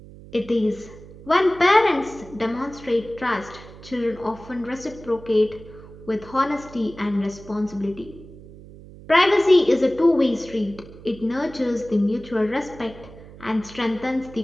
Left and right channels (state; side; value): noise; right; hum, 18 dB below the sound